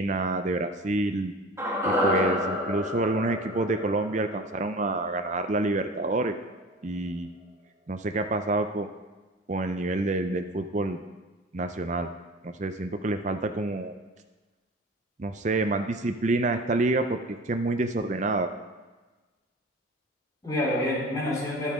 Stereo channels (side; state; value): both; normal; correlation 0.37